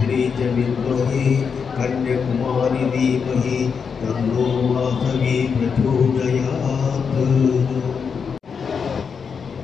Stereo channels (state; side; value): quieter; right; 6.1 dB